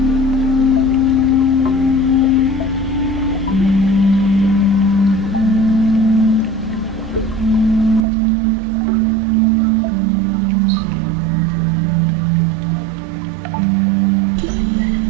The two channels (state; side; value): drops out; left; at 8.1 s